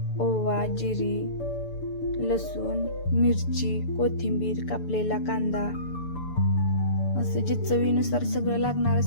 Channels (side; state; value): right; late; 6.9 ms